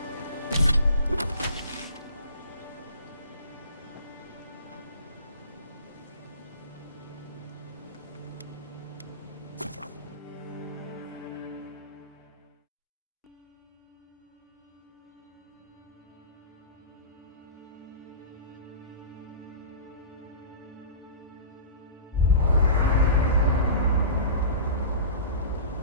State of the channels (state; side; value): inverted; both; correlation -0.35